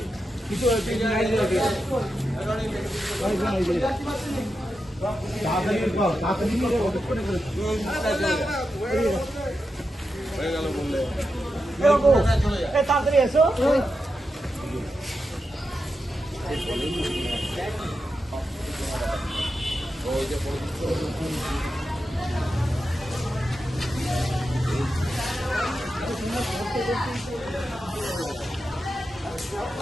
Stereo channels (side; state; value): both; normal; correlation 0.89